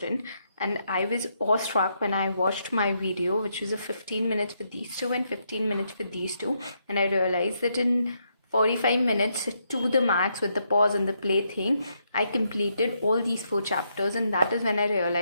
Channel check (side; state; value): both; inverted; correlation -0.78